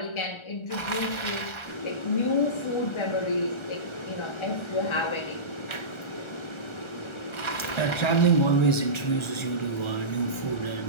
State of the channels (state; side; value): late; right; 1.3 ms